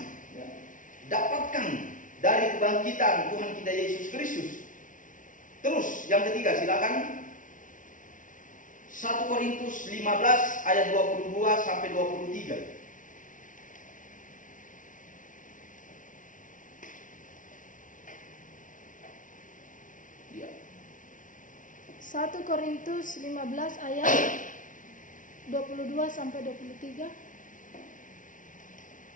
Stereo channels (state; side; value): late; right; 0.38 ms